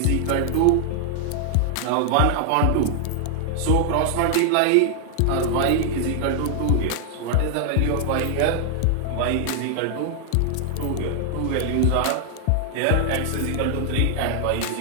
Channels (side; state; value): both; different; correlation 0.00